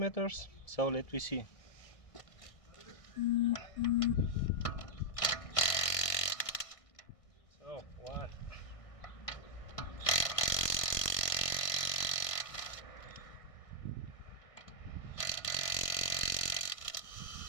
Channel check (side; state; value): right; late; 1.6 ms